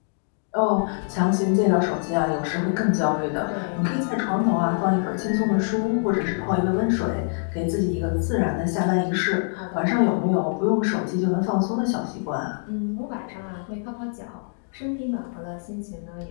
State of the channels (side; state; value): right; silent; 62 dB below the other